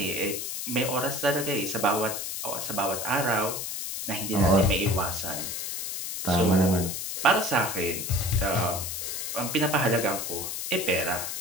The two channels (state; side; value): noise; left; hiss, 4 dB below the sound